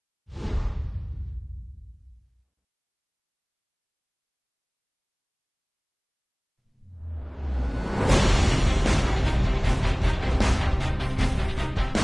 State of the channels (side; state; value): both; identical; correlation 1.00